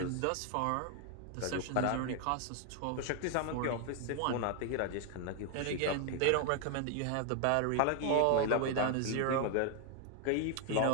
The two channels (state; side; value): different; both; correlation 0.00